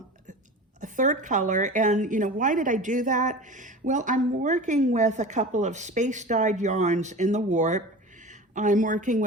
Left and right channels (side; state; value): both; normal; correlation 0.34